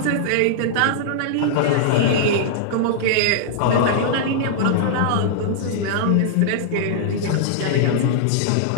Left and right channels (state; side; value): different; both; correlation -0.02